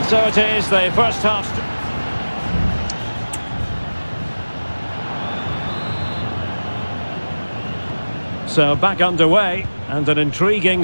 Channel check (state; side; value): inverted; both; correlation -1.00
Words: so it is, the first half... So back underway, and an intriguing